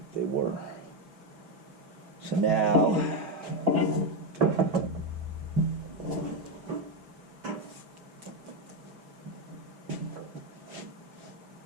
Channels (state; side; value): late; left; 5.5 ms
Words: they were. So now,